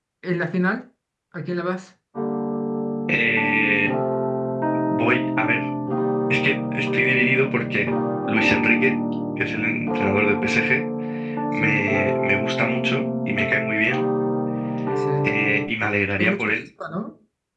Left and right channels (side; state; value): both; identical; correlation 1.00